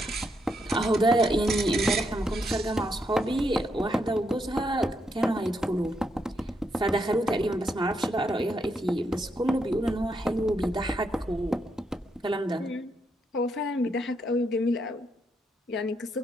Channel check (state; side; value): normal; both; correlation 0.79